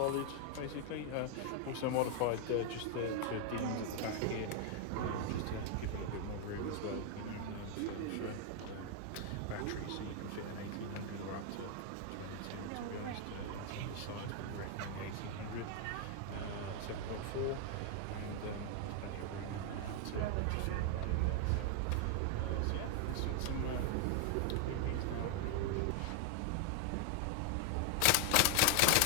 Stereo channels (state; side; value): different; both; correlation 0.00